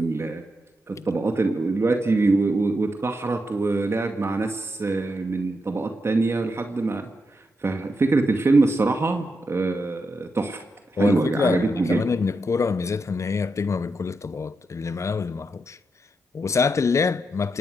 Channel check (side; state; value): both; normal; correlation 0.84